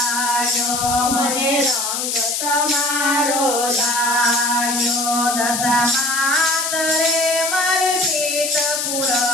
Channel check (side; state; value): left; noise; hiss, 1 dB below the sound